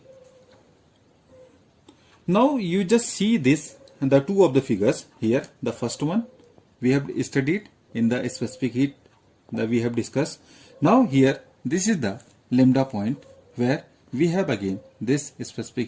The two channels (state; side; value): identical; both; correlation 1.00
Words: Now you just see this and the two of the figures here. The first one we have studied in the specific heat that we have discussed. Now here this is the lambda point where we have again this